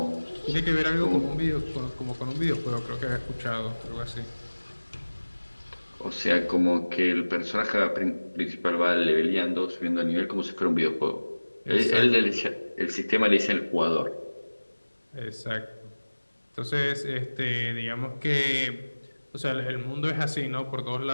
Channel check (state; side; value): inverted; both; correlation -1.00